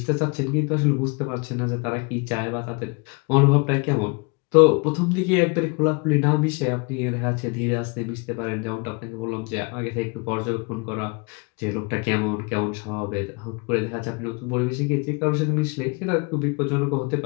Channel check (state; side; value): quieter; right; 31.7 dB